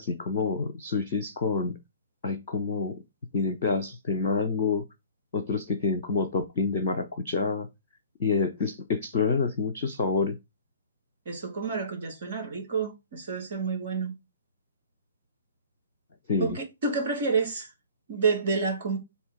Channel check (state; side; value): inverted; both; correlation -0.44